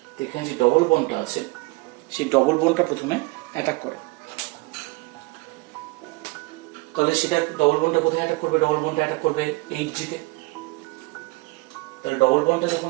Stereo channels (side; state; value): left; quieter; 24.7 dB